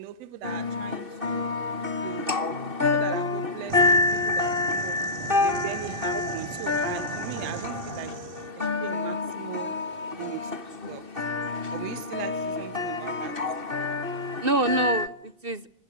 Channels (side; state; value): left; late; 2.6 ms